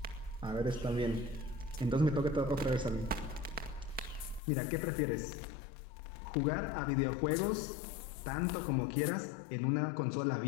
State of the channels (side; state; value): right; drops out; at 4.4 s